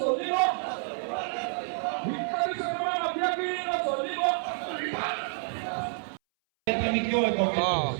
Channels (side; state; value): left; silent; 59 dB below the other